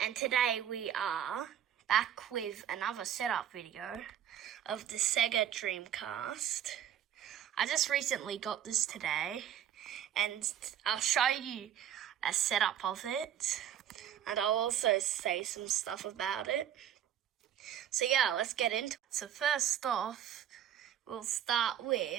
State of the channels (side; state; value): left; quieter; 10.2 dB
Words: today we are back with another setup video of the Sega Dreamcast. I just recently got this today, and I'll show you a setup of it, and I'll also say some stuff about it. So yeah, let's get into it. So first off, we'll start